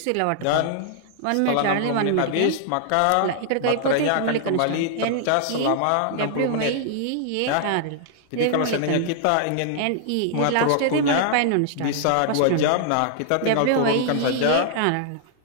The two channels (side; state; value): both; different; correlation -0.01